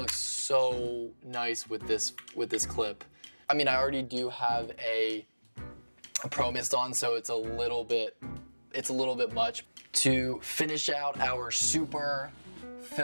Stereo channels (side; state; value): both; inverted; correlation -1.00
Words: so nice with this clip. I mean, I already do have a Pro Mist on, so it's a little bit much. To finish out our super